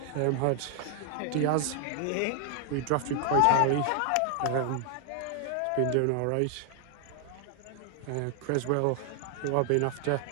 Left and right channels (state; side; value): different; both; correlation 0.00